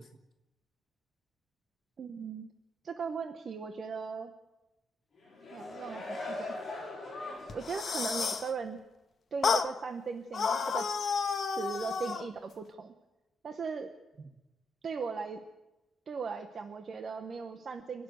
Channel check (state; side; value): normal; both; correlation 0.78